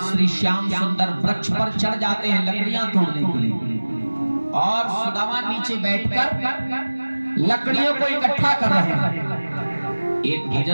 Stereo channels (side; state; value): both; inverted; correlation -1.00